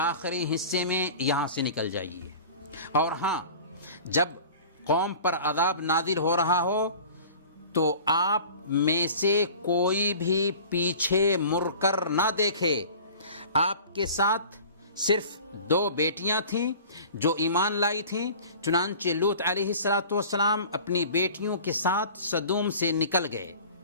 حصے میں یہاں سے نکل جائیے، اور ہاں جب قوم پر عذاب نازل ہو رہا ہو تو آپ میں سے کوئی بھی پیچھے مڑ کر نہ دیکھے. آپ کے ساتھ صرف 2 بیٹیاں تھیں جو ایمان لائی تھیں. چنانچہ لوط علیہ السلام اپنی بیٹیوں کے ساتھ سدوم سے نکل گئے.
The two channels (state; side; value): inverted; both; correlation -0.42